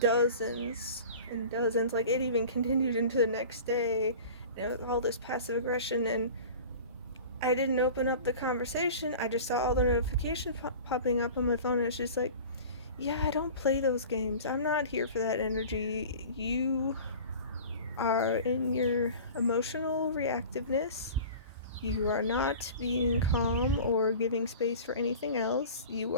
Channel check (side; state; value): both; inverted; correlation -0.39